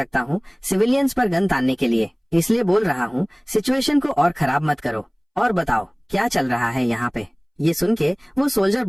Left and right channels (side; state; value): both; identical; correlation 1.00